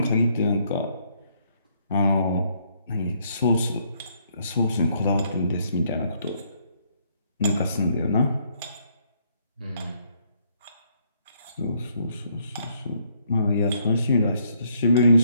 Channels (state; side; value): inverted; both; correlation -0.69